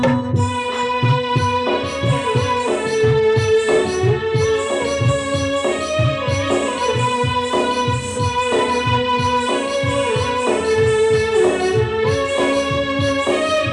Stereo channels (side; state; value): both; identical; correlation 1.00